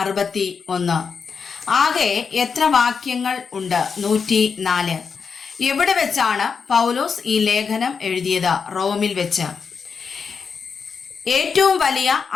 61. ആകെ എത്ര വാക്യങ്ങൾ ഉണ്ട്? 104. എവിടെ വെച്ചാണ് പൗലോസ് ഈ ലേഖനം എഴുതിയത്? റോമിൽ വെച്ച്. ഏറ്റവും വലിയ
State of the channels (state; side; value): quieter; right; 5.8 dB